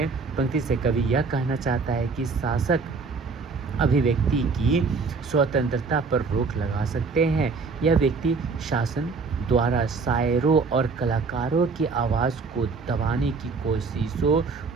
से कवि यह कहना चाहता है कि शासक अभिव्यक्ति की स्वतंत्रता पर रोक लगा सकते हैं। यह व्यक्ति शासन द्वारा शायरों और कलाकारों की आवाज़ को दबाने की कोशिशों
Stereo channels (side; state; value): left; quieter; 4.5 dB